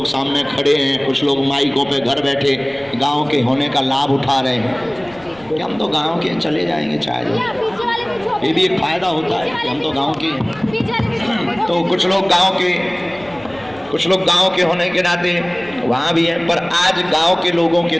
सामने खड़े हैं, कुछ लोग माइकों पे घर बैठे गांव के होने का लाभ उठा रहे हैं कि हम तो गांव के चले जाएंगे चाहे जो। ये भी एक फायदा होता है कि हम तो गांव के हैं। तो कुछ लोग गांव के होने के नाते वहाँ भी हैं, पर आज गांव के लोगों के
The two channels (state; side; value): noise; left; rumble, 26 dB below the sound